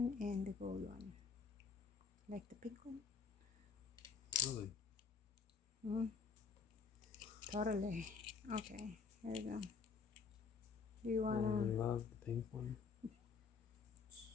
and the gold one. Like the pink one? Really? Totally. Okay. Here you go. Do you I wanna? love the pink one.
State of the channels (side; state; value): right; quieter; 5.3 dB